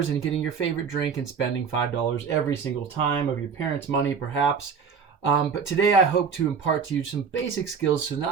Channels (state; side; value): quieter; left; 6.2 dB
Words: and getting your favorite drink and spending $5 every single time of your parents' money, perhaps. But today I hope to impart to you some basic skills so not